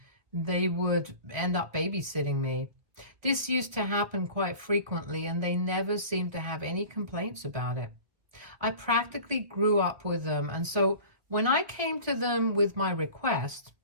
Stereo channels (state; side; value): late; left; 1.9 ms